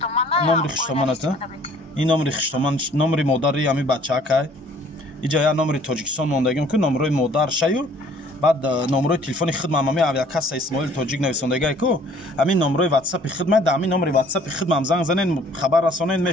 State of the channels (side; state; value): both; normal; correlation 0.57